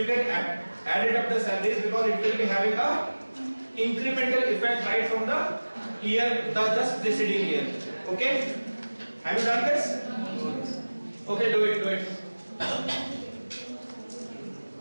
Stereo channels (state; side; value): inverted; both; correlation -1.00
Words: can add it up the salaries because it will be having a incremental effect right from the year, the just preceding year. Okay? Have you done this? Okay, do it.